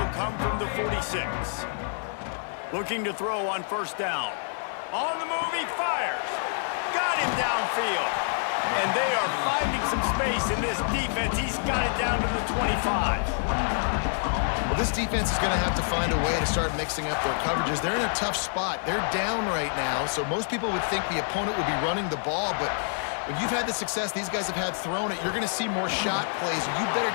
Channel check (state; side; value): silent; right; digital silence